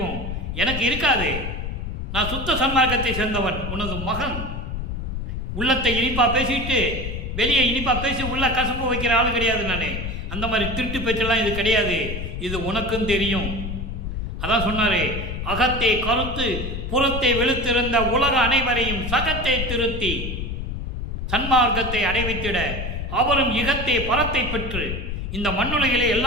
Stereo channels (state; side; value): noise; left; rumble, 5 dB below the sound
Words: எனக்கு இருக்காது. நான் சுத்த சன்மார்க்கத்தை சேர்ந்தவன், உனது மகன். உள்ளத்தை இனிப்பா பேசிட்டு வெளியே இனிப்பா பேசி உள்ள கசப்பு வைக்கிற ஆள் கிடையாது நானே. அந்த மாதிரி திருட்டு பேச்செல்லாம் இது கிடையாது. இது உனக்கும் தெரியும். அதான் சொன்னாரே, அகத்தை கருத்து புறத்தை வெளுத்திருந்த உலக அனைவரையும் சகத்தை திருத்தி சன்மார்க்கத்தை அடைவித்திட அவரும் இகத்தை பரத்தை பெற்று இந்த மண்ணுலகிலே